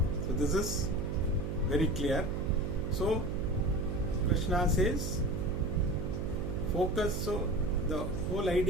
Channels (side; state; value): right; noise; hum, 3 dB below the sound